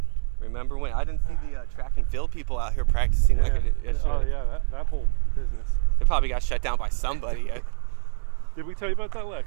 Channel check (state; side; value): silent; left; digital silence